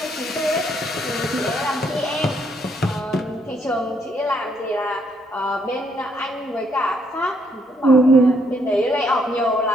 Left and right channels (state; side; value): normal; both; correlation 0.71